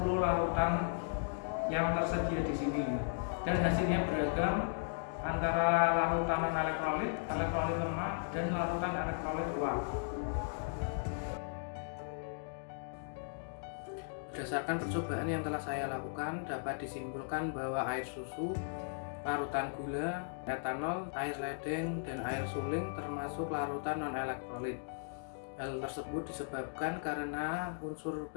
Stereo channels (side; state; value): right; silent; digital silence